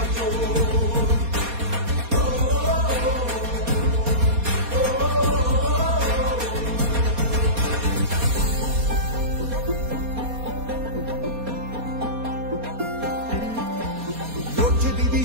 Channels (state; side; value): late; left; 4.2 ms